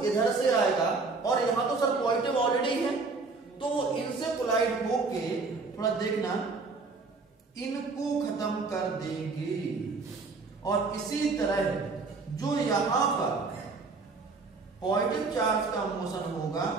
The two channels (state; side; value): quieter; left; 4.1 dB